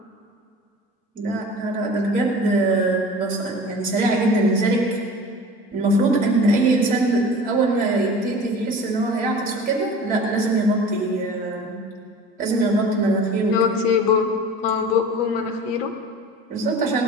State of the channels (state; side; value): normal; both; correlation 0.40